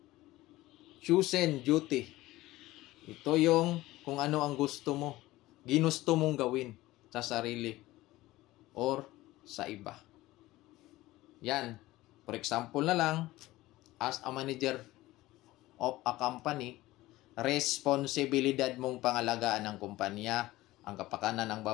chosen duty. Ito yung kung ano ang gusto mo, ginusto mong gawin sa sarili or sa iba. Yan. For example na lang, as a manager of a company, responsibilidad mong pangalagaan ng kumpanya, ang kapakanan ng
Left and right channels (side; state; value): right; quieter; 17.7 dB